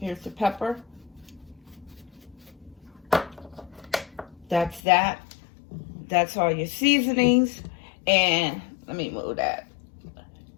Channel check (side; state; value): right; drops out; at 4.8 s